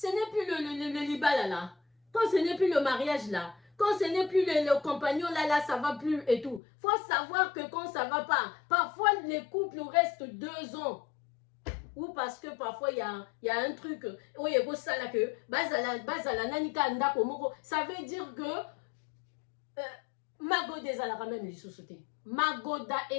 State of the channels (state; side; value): drops out; right; at 6.6 s